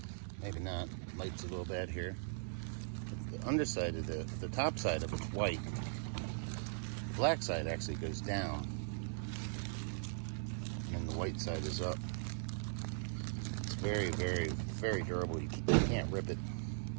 maybe not, light's a little bad here. The underside of the top side of it's white. The black side actually goes down, and then the white side is up. It's very, very, very durable. You can't rip it.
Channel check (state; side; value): silent; left; digital silence